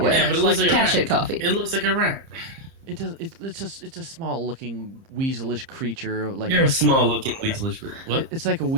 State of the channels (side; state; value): left; late; 30 ms